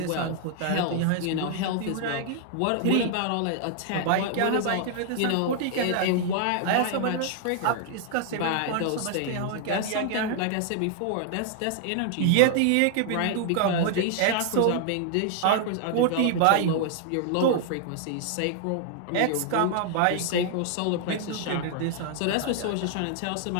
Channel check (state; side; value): different; both; correlation 0.00